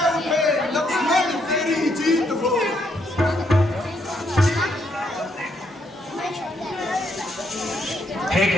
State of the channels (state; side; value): normal; both; correlation 0.74